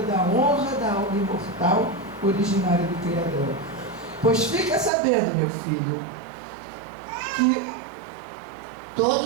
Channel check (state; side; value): drops out; left; at 4.9 s